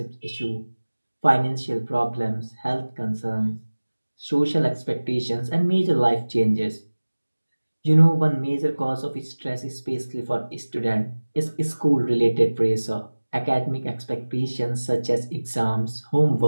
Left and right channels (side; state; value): both; inverted; correlation -1.00